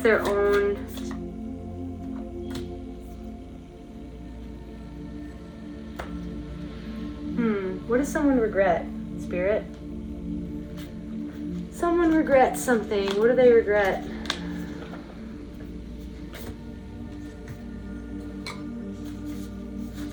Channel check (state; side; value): identical; both; correlation 1.00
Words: their own what does someone regret, Spirit? Someone regrets something. What do they regret?